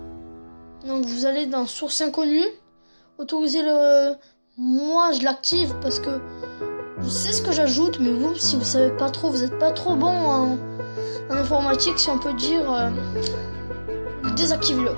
Donc vous allez dans source inconnue, autoriser le... Moi je l'active parce que je sais ce que j'ajoute, mais vous si vous savez pas trop, vous n'êtes pas trop bon en informatique, si on peut dire, désactive-le.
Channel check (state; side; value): inverted; both; correlation -1.00